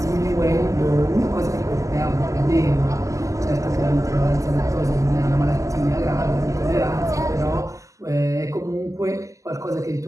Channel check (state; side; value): late; left; 0.16 ms